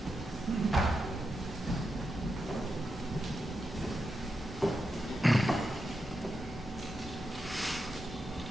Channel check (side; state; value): both; normal; correlation 0.87